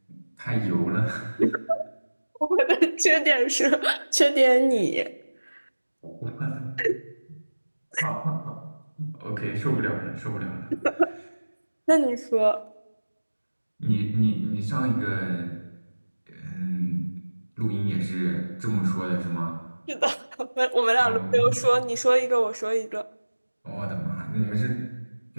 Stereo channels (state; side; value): inverted; both; correlation -1.00